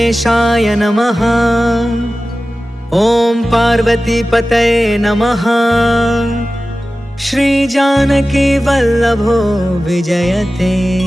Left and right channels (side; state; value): both; normal; correlation 0.95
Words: नमः। ओम पार्वती पतये नमः। श्री जानकी वल्लभो विजयते।